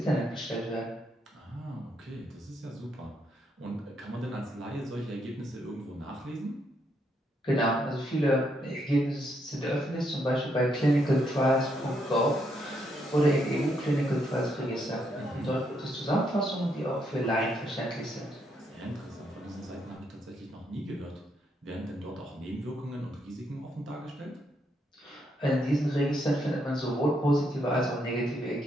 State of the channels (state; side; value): normal; both; correlation 0.76